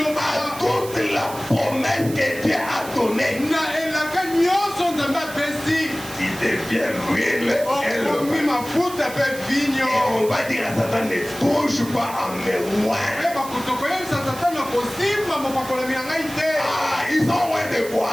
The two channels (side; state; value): right; noise; hiss, 14 dB below the sound